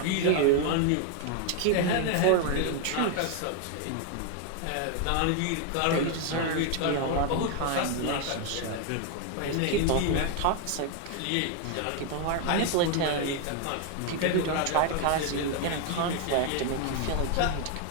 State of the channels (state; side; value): different; both; correlation 0.01